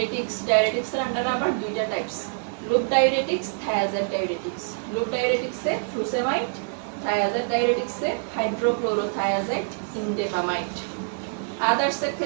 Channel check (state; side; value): silent; left; digital silence